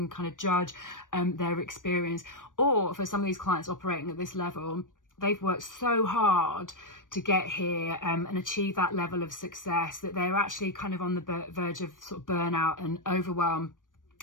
kind of judge their experience. Or for some of these clients operating at this level, they've worked so hard to get here and achieve that level of success that they're actually kind of on the verge of sort of burnout and overwhelm.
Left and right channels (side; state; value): right; late; 0.88 ms